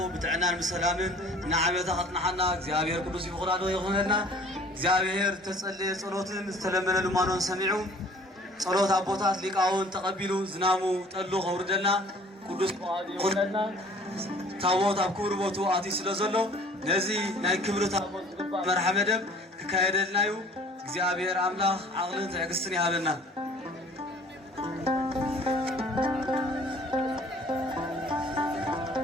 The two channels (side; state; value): both; normal; correlation 0.51